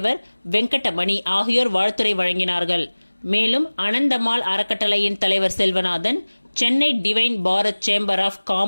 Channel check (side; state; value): both; inverted; correlation -1.00